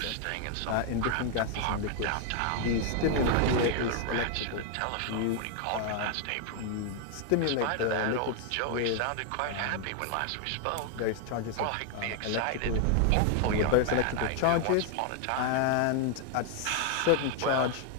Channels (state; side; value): different; both; correlation 0.00